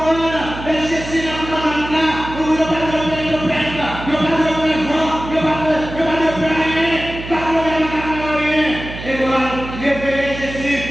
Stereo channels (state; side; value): noise; right; hum, 10 dB below the sound